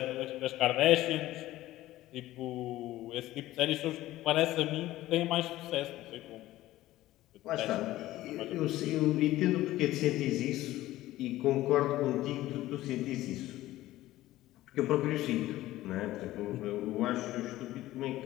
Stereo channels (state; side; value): quieter; right; 15.8 dB